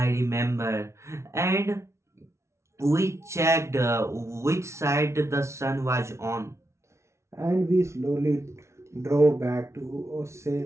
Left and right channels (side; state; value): left; late; 0.13 ms